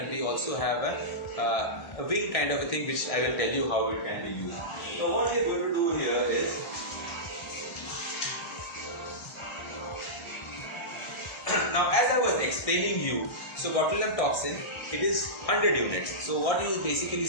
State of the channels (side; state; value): right; late; 1.6 ms